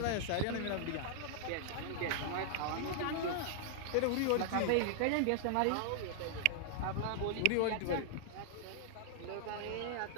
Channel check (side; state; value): both; different; correlation -0.01